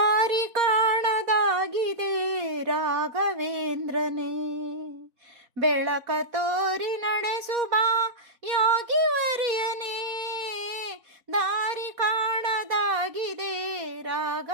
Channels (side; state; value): left; late; 4.3 ms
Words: ಕಾಣದಾಗಿದೆ ರಾಘವೇಂದ್ರನೇ, ಬೆಳಕ ತೋರಿ ನಡೆಸುವ ಯೋಗಿವರ್ಯನೇ. ದಾರಿ ಕಾಣದಾಗಿದೆ